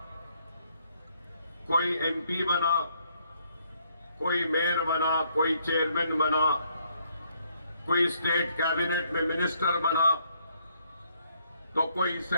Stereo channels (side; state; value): both; inverted; correlation -0.70